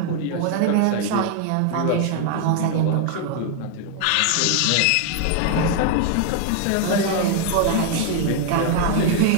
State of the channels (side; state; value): both; different; correlation 0.00